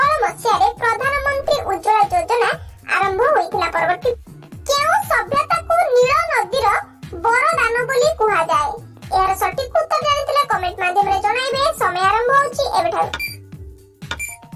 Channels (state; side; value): identical; both; correlation 1.00